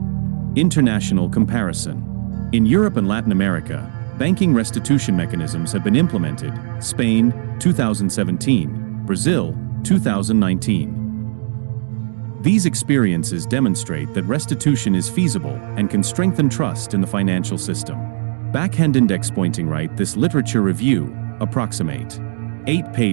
International comparison. In Europe and Latin America, banking restitution mechanisms have been implemented. Spain, 2017, Brazil, 2019. These experiences demonstrate that restitution is feasible and can strengthen trust in the financial system. Backhand index pointing right. This literature review, approximate 8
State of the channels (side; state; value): left; silent; digital silence